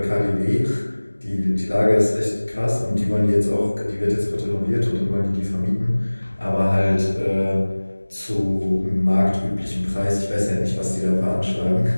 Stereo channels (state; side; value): inverted; both; correlation -1.00